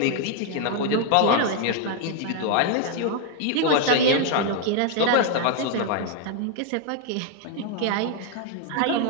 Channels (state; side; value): different; both; correlation 0.00